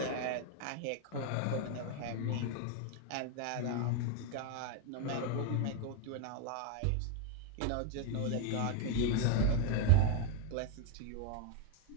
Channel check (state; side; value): different; both; correlation 0.01